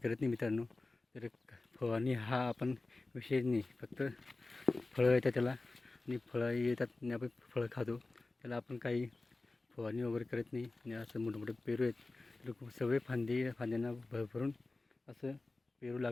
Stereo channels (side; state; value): right; quieter; 3.2 dB